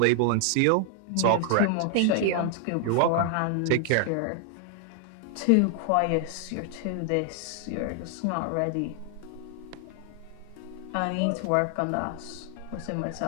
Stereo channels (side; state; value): both; different; correlation 0.00